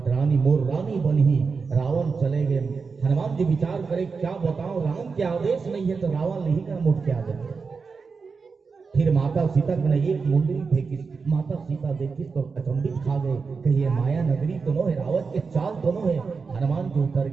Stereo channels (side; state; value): left; quieter; 4.9 dB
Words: मोर रानी बनी। रावण चले गए। हनुमान जी विचार करे क्या बताओ, राम के आदेश नहीं है तो रावण नहीं कर मुठ के आ जाए। फिर माता सीता ने एक मुंदरी फेंकी। माता सीता देखी तो अचंभित खा गए, कही ये माया नगरी तो नो है, रावण के चाल तो नो है। हनुमान जी उतर